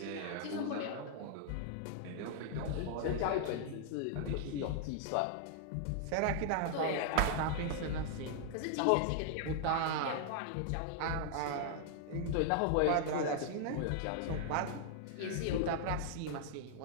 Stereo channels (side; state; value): both; different; correlation -0.01